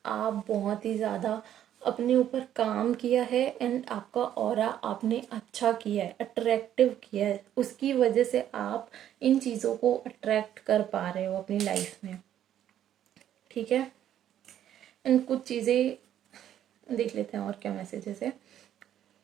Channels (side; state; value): left; quieter; 10.9 dB